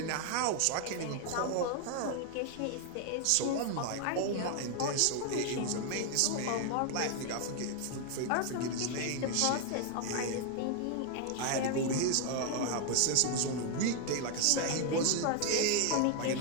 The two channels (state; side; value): different; both; correlation 0.00